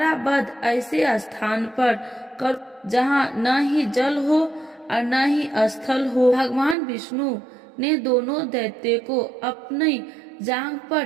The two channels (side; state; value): left; drops out; at 6.8 s